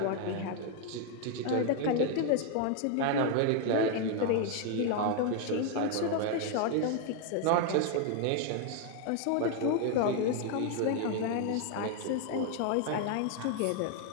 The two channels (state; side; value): different; both; correlation 0.01